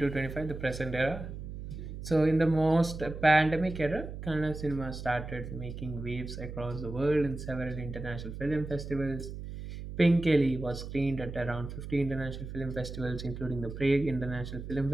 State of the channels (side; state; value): right; noise; hum, 9 dB below the sound